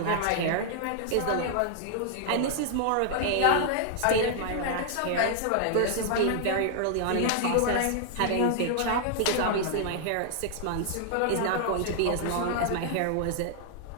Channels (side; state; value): both; different; correlation 0.00